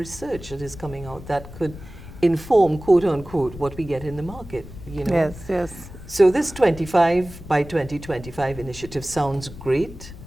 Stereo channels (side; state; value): left; noise; rumble, 15 dB below the sound